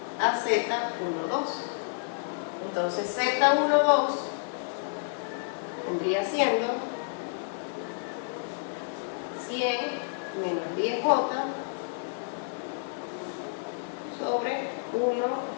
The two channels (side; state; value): right; silent; digital silence